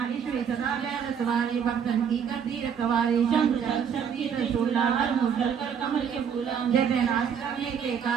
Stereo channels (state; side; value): quieter; left; 7.5 dB